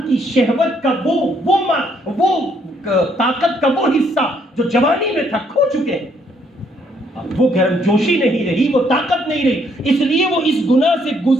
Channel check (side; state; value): both; normal; correlation 0.69